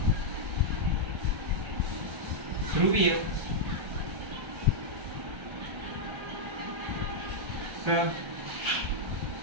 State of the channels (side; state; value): left; late; 1.3 ms